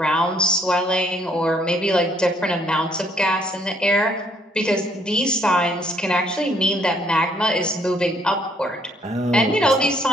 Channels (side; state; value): both; normal; correlation 0.67